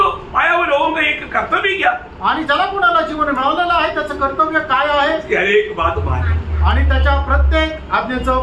पाया वो लोगों का एक कर्तव्य क्या? आणि ज्याला कोणाला जीवन मिळालेलं आहे त्याचं कर्तव्य काय आहे? हर एक बात मानना आणि त्याच्या प्रत्येक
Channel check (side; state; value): both; identical; correlation 1.00